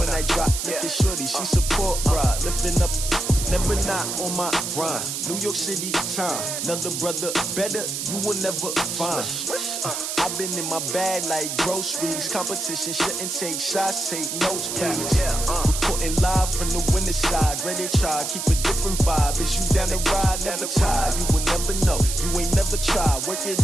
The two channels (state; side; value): noise; right; hiss, 3 dB below the sound